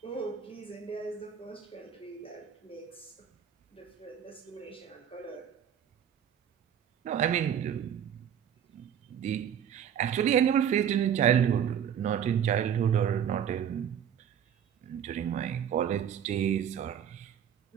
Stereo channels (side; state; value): left; quieter; 8.9 dB